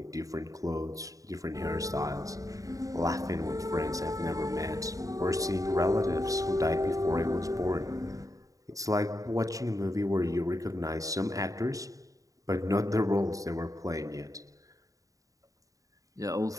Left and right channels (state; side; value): late; left; 0.16 ms